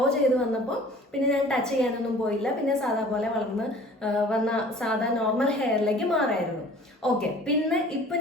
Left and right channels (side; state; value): both; normal; correlation 0.48